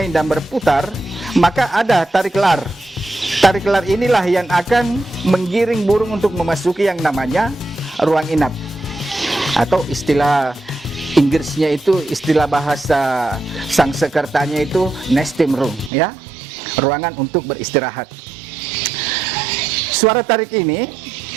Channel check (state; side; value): drops out; left; at 15.9 s